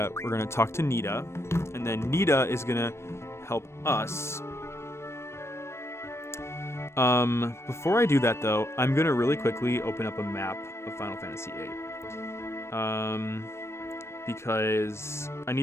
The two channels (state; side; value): late; right; 0.13 ms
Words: we're going to talk to Nita, and then Nita is going to help us. Before I do that, though, I'm going to really quickly open up a map of Final Fantasy VIII. Because I